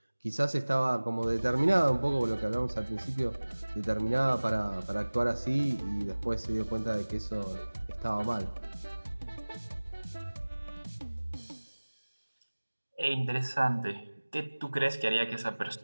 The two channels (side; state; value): both; inverted; correlation -1.00